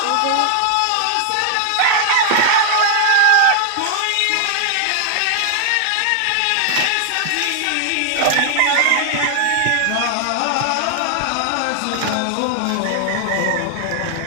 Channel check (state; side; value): different; both; correlation 0.00